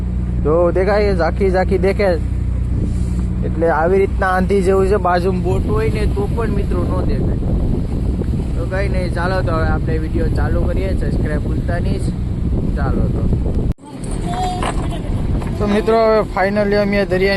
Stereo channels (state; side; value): identical; both; correlation 1.00